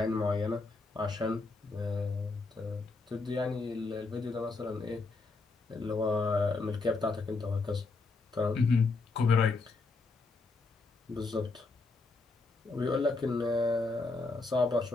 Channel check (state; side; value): quieter; right; 3.8 dB